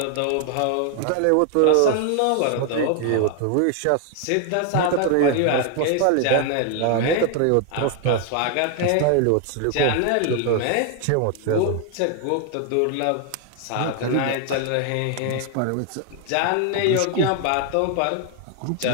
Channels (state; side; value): different; both; correlation 0.00